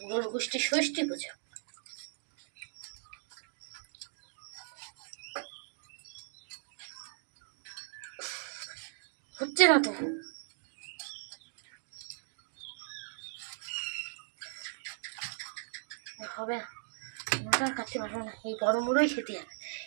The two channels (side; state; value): left; silent; digital silence